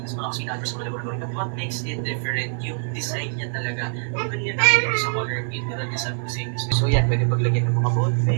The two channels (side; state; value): left; silent; digital silence